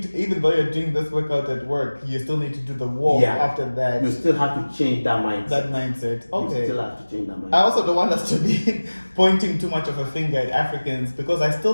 to, even though you're doing this workout at work, you still need to do the walk after that. You still have to change that mindset. Okay. You still have to change that mindset. I also don't want us to be pointing too much of a finger at Africans, because I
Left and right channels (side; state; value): both; inverted; correlation -1.00